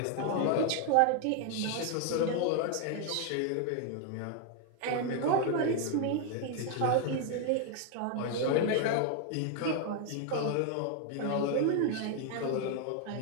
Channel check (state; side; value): different; both; correlation 0.00